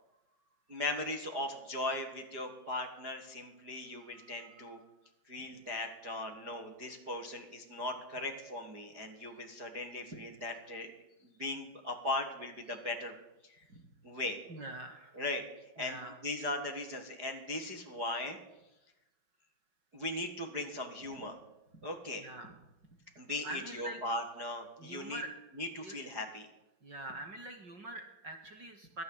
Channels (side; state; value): left; late; 4.9 ms